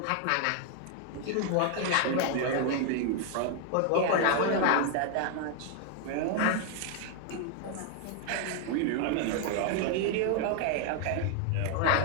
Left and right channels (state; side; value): different; both; correlation 0.00